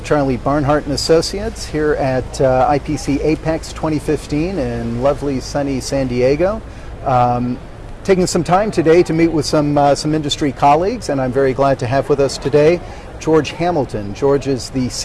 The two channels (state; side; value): identical; both; correlation 1.00